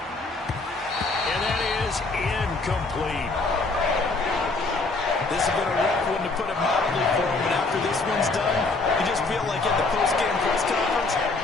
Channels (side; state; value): right; quieter; 3.5 dB